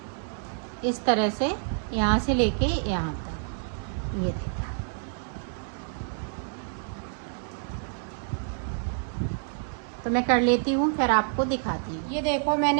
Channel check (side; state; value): left; silent; digital silence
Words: इस तरह से यहाँ से लेके यहाँ तक। ये देखें, तो मैं कर लेती हूँ फिर आपको दिखाती हूँ। ये देखो